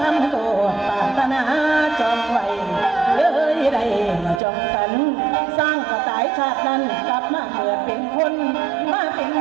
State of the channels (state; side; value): drops out; left; at 4.4 s